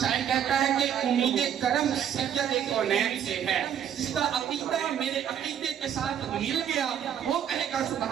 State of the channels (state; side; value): quieter; left; 9.3 dB